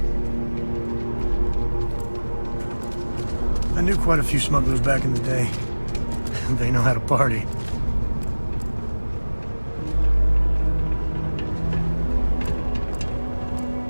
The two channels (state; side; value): inverted; both; correlation -1.00